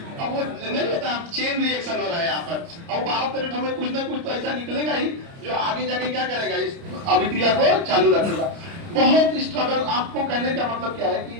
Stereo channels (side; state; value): left; late; 30 ms